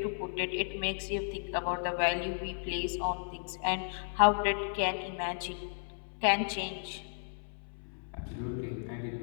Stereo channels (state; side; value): silent; right; 55 dB below the other